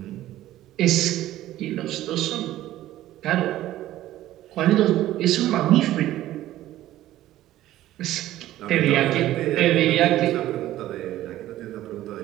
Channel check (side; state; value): left; quieter; 14.3 dB